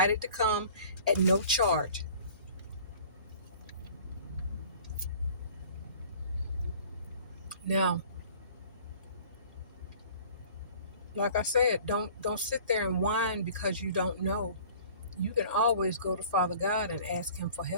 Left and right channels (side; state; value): both; inverted; correlation -0.49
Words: to come at no charge. Now, like I said, don't sit there and whine because you don't know. You can always go to Father God and ask him for